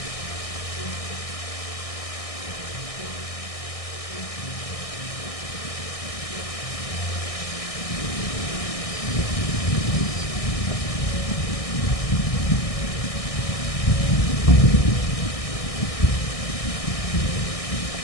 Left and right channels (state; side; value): late; right; 1.6 ms